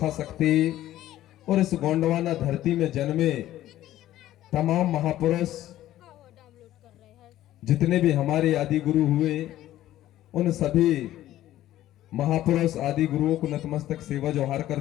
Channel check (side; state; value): right; quieter; 13.8 dB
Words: शक्ति और इस गोंडवाना धरती में जन्मे तमाम महापुरुष जितने भी हमारे आदि गुरु हुए, उन सभी महापुरुष आदि गुरुओं को नतमस्तक सेवा जोहार